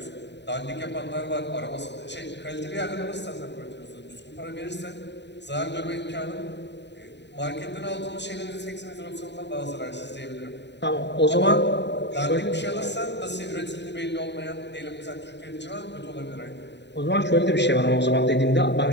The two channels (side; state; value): right; late; 0.51 ms